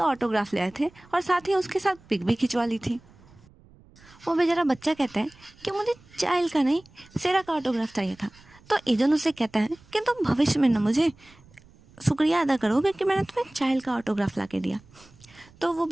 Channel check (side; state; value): right; noise; rumble, 26 dB below the sound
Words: ऑटोग्राफ ले आए थे और साथ ही उसके साथ पिक भी खिंचवा ली थी। वो बेचारा बच्चा कहता है कि मुझे चाइल्ड का नहीं, सेरा का ऑटोग्राफ चाहिए था। तो इजुन उसे कहता है कि तुम भविष्य में ना मुझे शुक्रिया अदा करोगे कि मैंने तुम्हें चाइल्ड का ऑटोग्राफ ला के दिया। तो वो